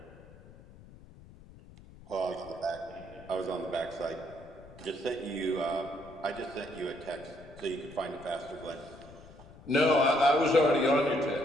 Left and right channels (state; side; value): noise; left; rumble, 20 dB below the sound